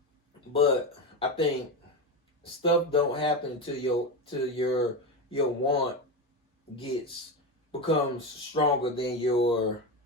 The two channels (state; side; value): normal; both; correlation 0.17